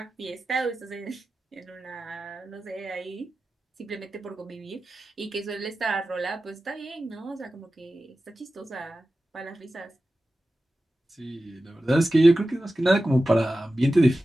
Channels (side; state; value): both; normal; correlation 0.94